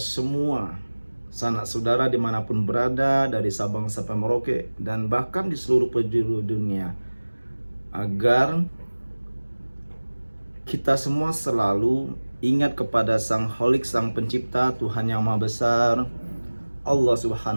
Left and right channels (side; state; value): both; inverted; correlation -1.00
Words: sanak saudara dimanapun berada, dari Sabang sampai Merauke dan bahkan di seluruh penjuru dunia, agar kita semua selalu ingat kepada Sang Holik, Sang Pencipta, Tuhan yang Maha Besar, Allah